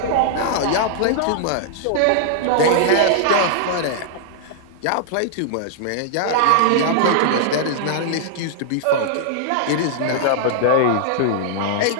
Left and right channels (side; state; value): both; different; correlation -0.01